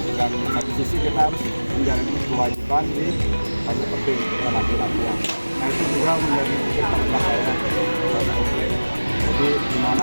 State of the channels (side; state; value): both; inverted; correlation -1.00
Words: dan satu sisi kita harus menjalani kewajiban di panjat tebing latihan. Nah itu juga menjadi titik terendah saya. Jadi